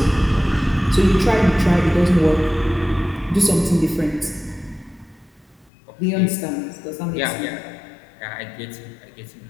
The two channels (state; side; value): drops out; right; at 5.7 s